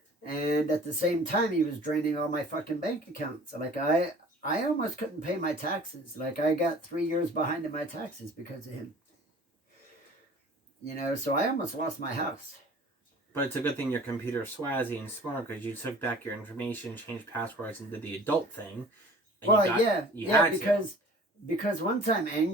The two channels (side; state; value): both; normal; correlation 0.47